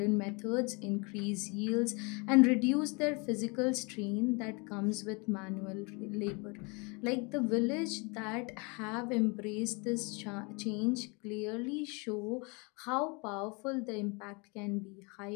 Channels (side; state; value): right; quieter; 30.6 dB